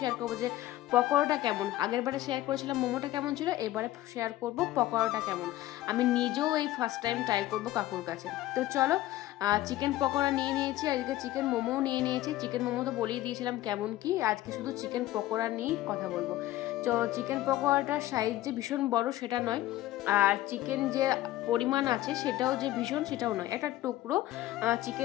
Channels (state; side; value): quieter; right; 15.3 dB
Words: শেয়ার করবো যে পকোড়াটা কেমন। আগের বারে শেয়ার করেছিলাম মোমোটা কেমন ছিল, এবারে শেয়ার করবো পকোড়াটা কেমন। আমি নিজেও এই ফার্স্ট টাইম ট্রাই করবো কাকুর কাছে। তো চলো, চিকেন পকোড়া নিয়ে নিয়েছি, আজকে চিকেন মোমোও নিয়ে নিয়েছি। চিকেন মোমো তো বলেই দিয়েছিলাম কেমন কি, আজকে শুধু চিকেন পকোড়া নিয়েই কথা বলবো। তো চিকেন পকোড়াটার সাইজ যে ভীষণ বড় সেটা নয়, আর চিকেন যে পরিমাণ আছে সেটাও যে ভীষণ সেটাও নয়, একটা টুকরো